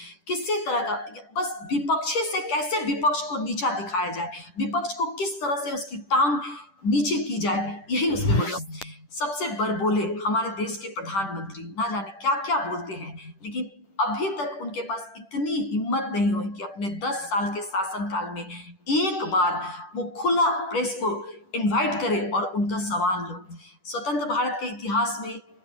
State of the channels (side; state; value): right; late; 10 ms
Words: किसी तरह का, बस विपक्षी से कैसे विपक्ष को नीचा दिखाया जाए, विपक्ष को किस तरह से उसकी टांग नीचे की जाए, यही उसमें बोला। सबसे बड़बोले हमारे देश के प्रधानमंत्री ना जाने क्या क्या बोलते हैं, लेकिन अभी तक उनके पास इतनी हिम्मत नहीं हुई कि अपने 10 साल के शासनकाल में एक बार वो खुला प्रेस को इनवाइट करे और उनका सवाल लो। स्वतंत्र भारत के इतिहास में